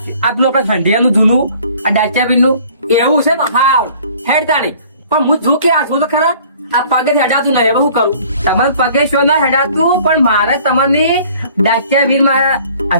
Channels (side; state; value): both; inverted; correlation -0.53